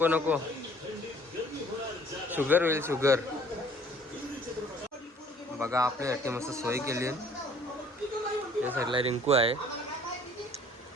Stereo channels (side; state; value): both; normal; correlation 0.55